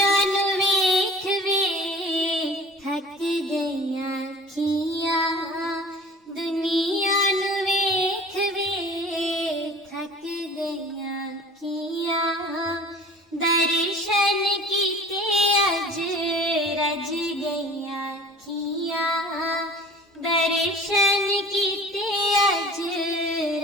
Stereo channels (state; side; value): normal; both; correlation 0.44